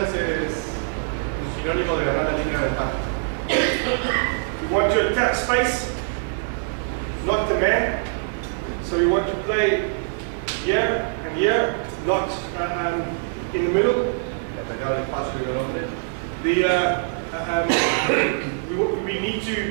es un sinónimo de ganar la línea de ventaja. We want to attack space, not the man. So we want to play here and here, not in the middle. Atacar el espacio y el hombre. We need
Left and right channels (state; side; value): silent; left; digital silence